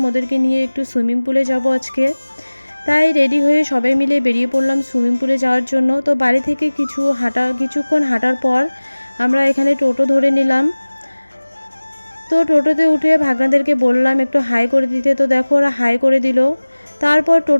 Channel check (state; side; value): inverted; both; correlation -1.00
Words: ওদেরকে নিয়ে একটু সুইমিং পুলে যাব আজকে। তাই রেডি হয়ে সবাই মিলে বেরিয়ে পড়লাম সুইমিং পুলে যাওয়ার জন্য। তো বাড়ি থেকে কিছুক্ষণ হাঁটার পর আমরা এখানে টোটো ধরে নিলাম। তো টোটোতে উঠে ভাগনাদেরকে বললাম একটু হাই করে দিতে, তো দেখো ওরা হাই করে দিল। তারপর